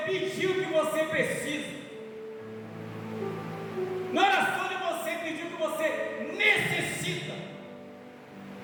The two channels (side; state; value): both; identical; correlation 1.00